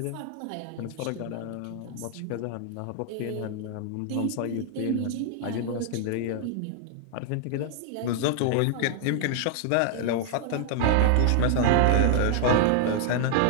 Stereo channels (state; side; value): different; both; correlation -0.01